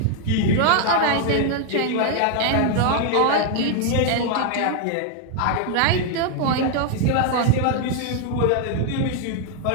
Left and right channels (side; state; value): both; different; correlation 0.00